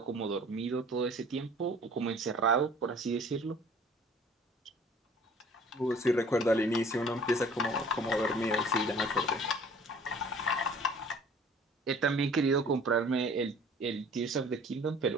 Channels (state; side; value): normal; both; correlation 0.50